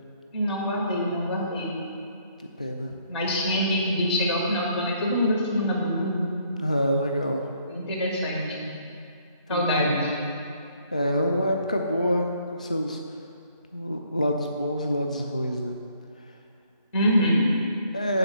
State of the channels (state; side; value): inverted; both; correlation -0.66